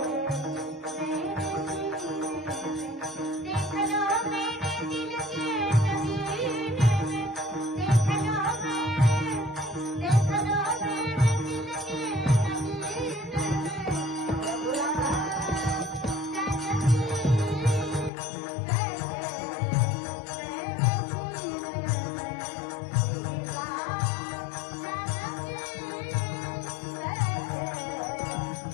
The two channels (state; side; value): drops out; right; at 18.1 s